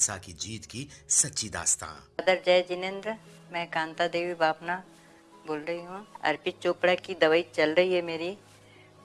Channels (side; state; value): both; identical; correlation 1.00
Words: की जीत की सच्ची दास्तां। अदर जय जिनेंद्र, मैं कांता देवी बापना बोल रही हूँ। अर्पित चोपड़ा की दवाई चल रही है मेरी,